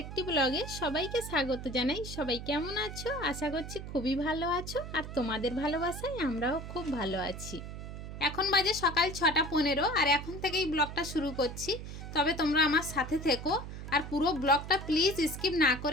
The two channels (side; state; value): right; noise; hum, 9 dB below the sound